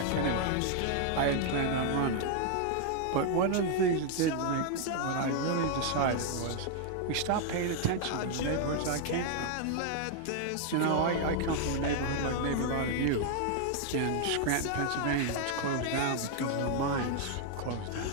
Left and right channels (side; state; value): both; different; correlation 0.00